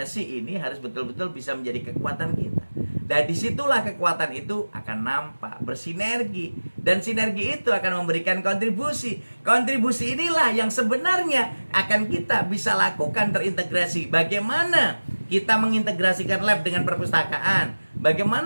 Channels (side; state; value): both; inverted; correlation -1.00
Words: ini harus betul-betul bisa menjadi kekuatan kita. Dan disitulah kekuatan itu akan nampak, bersinergi. Dan sinergi itu akan memberikan kontribusi. Kontribusi inilah yang sebenarnya akan kita bisa lakukan terintegrasi. Bagaimana kita mengintegrasikan lab dengan perpustakaan?